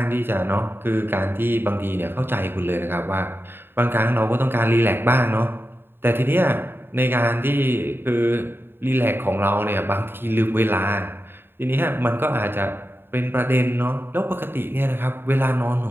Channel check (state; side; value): late; left; 0.10 ms